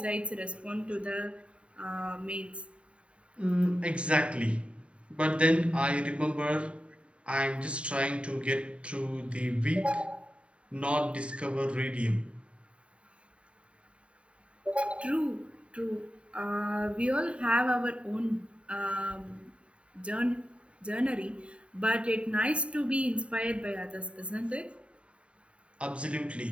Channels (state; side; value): late; left; 0.060 ms